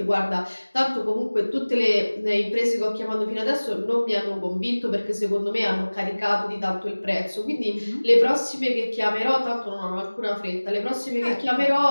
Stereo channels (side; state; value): both; inverted; correlation -1.00